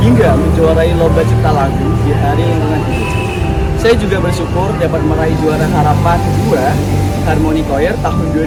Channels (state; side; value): identical; both; correlation 1.00